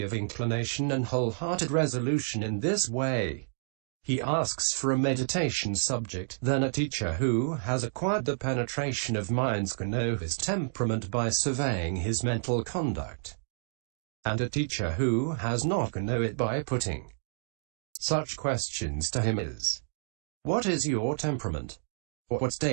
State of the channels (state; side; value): silent; left; digital silence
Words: of inclination and wholehearted resolution in this way, he asks for a meditation subject, then a teacher who has acquired the penetration of minds can know his temperament by surveying his mental conduct. And a teacher who has not can know it by putting such questions to him as, what is your temperament? What